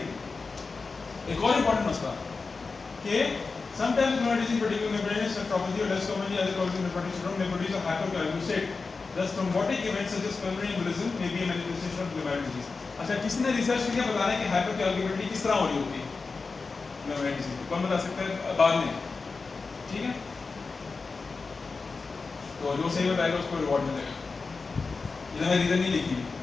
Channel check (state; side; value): quieter; right; 4.3 dB